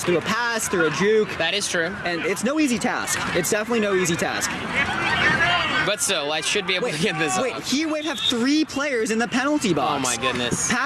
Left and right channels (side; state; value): both; identical; correlation 1.00